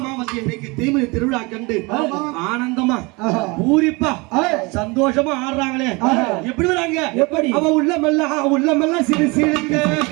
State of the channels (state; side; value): quieter; left; 26.4 dB